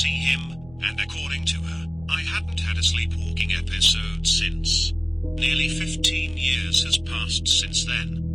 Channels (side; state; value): right; noise; rumble, 21 dB below the sound